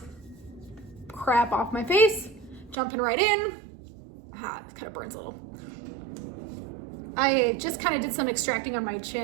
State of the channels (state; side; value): drops out; left; at 2.8 s